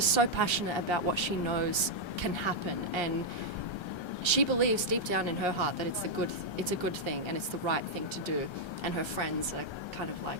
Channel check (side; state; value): right; late; 1.3 ms